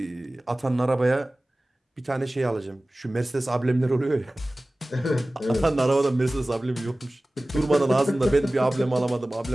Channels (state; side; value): normal; both; correlation 0.98